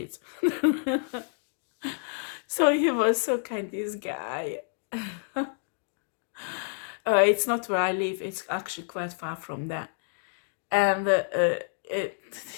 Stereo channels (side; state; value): right; silent; digital silence